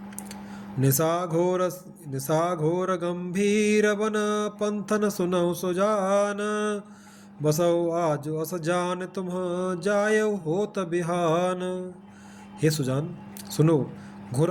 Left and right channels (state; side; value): identical; both; correlation 1.00